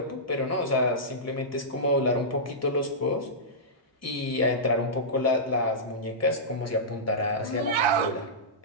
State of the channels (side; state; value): both; normal; correlation -0.15